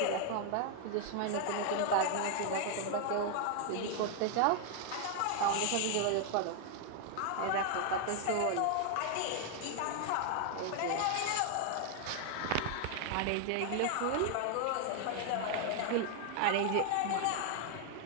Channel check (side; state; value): both; different; correlation 0.00